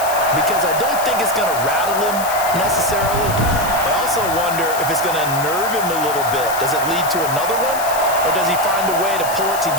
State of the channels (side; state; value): left; noise; hiss, 9 dB below the sound